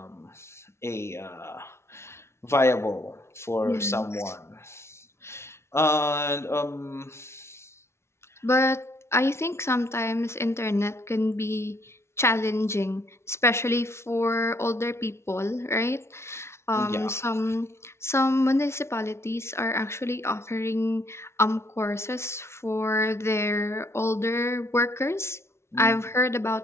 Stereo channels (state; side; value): late; right; 0.13 ms